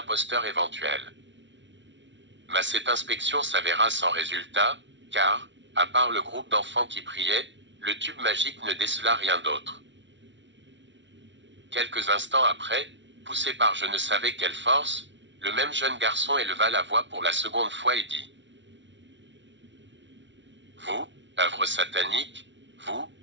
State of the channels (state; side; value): late; left; 0.53 ms